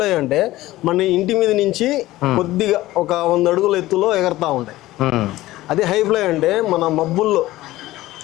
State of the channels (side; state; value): right; quieter; 16.8 dB